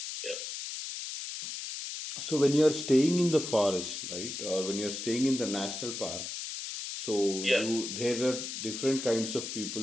So when you're staying in the forest, right, or when you're staying in the national park, so Yeah, there are different kinds of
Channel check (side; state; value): left; noise; hiss, 6 dB below the sound